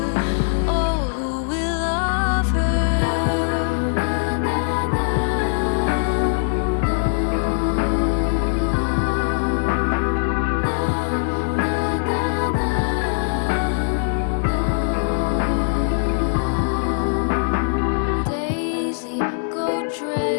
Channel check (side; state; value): right; silent; 65 dB below the other